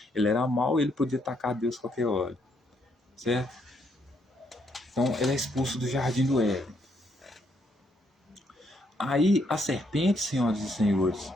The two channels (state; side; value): normal; both; correlation 0.74